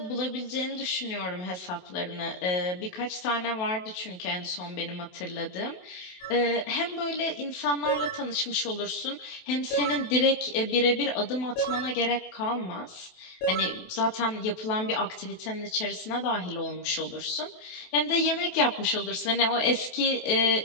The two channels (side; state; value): right; late; 27 ms